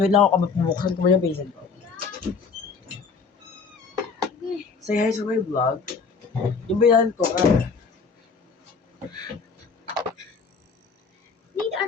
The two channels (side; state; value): right; quieter; 5.1 dB